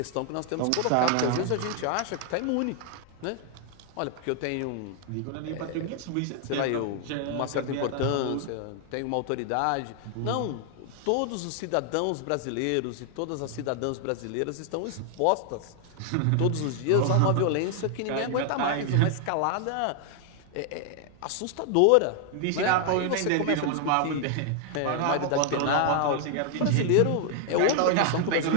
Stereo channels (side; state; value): both; different; correlation 0.00